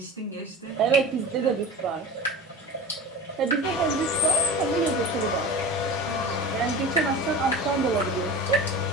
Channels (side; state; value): both; normal; correlation 0.34